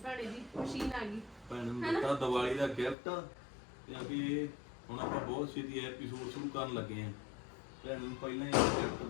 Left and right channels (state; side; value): drops out; right; at 3.0 s